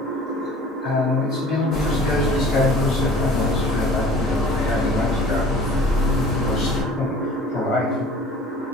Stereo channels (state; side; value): normal; both; correlation 0.47